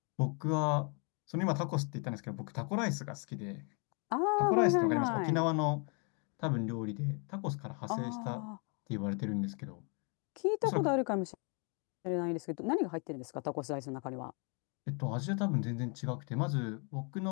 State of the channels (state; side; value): quieter; right; 36.3 dB